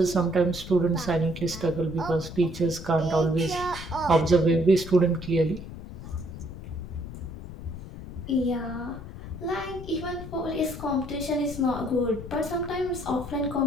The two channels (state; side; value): noise; left; rumble, 11 dB below the sound